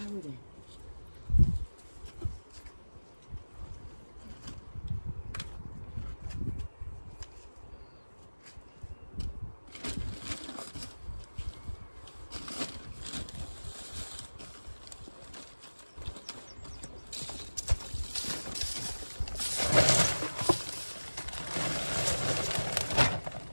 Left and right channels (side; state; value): both; inverted; correlation -1.00